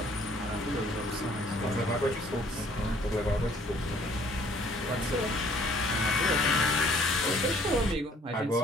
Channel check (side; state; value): both; normal; correlation 0.59